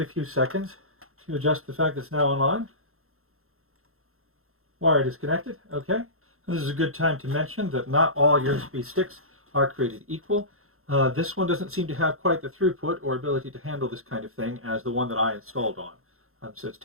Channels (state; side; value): late; left; 0.62 ms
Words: a few seconds to adjust the fact that it's now online. Wire disconnected. Okay. This is a good time to mention that not all USB sticks are created equal. This one doesn't seem to have quite the throughput or ability to handle this kind of thing as the one that I installed on. So it's